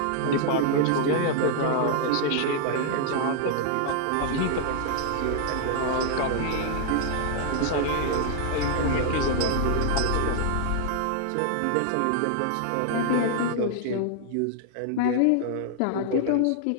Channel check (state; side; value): different; both; correlation -0.01